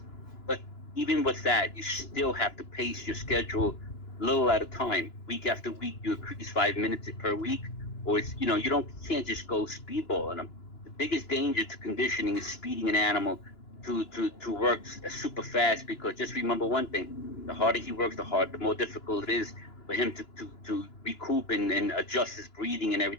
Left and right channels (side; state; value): right; late; 2.9 ms